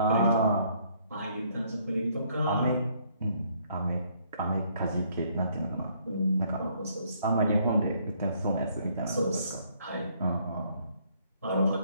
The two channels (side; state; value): both; inverted; correlation -0.66